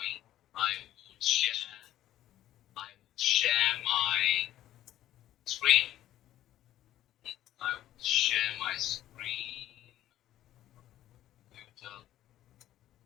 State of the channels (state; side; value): quieter; right; 13.2 dB